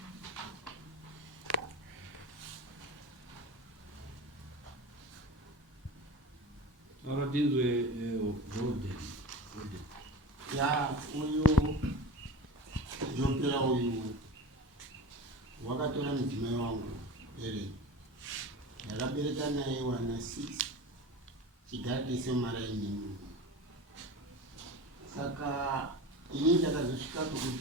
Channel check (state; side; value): normal; both; correlation 0.32